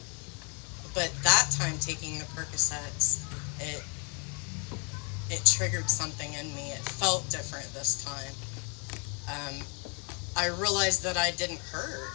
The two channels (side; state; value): right; quieter; 34.0 dB